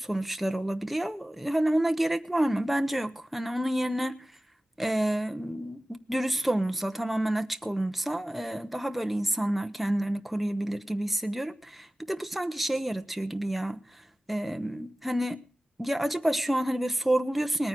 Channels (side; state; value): both; normal; correlation 0.96